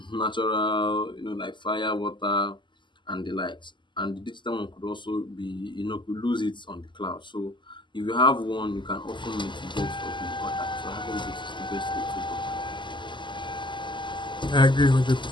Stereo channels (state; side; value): late; right; 0.23 ms